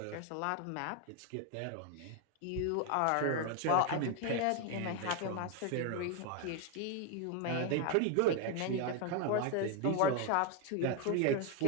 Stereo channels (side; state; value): both; different; correlation 0.01